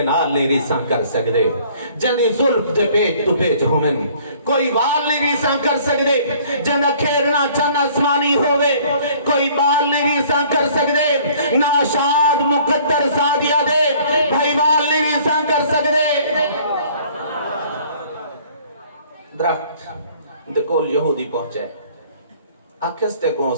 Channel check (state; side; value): inverted; both; correlation -0.55